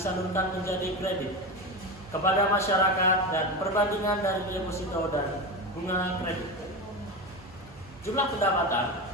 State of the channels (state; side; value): normal; both; correlation 0.21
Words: menjadi kredit kepada masyarakat dan perbandingan dari deposito dan bunga kredit. Jumlah pendapatan,